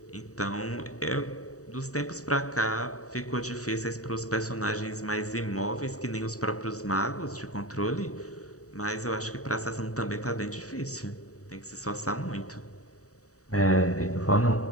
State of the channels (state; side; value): late; right; 0.66 ms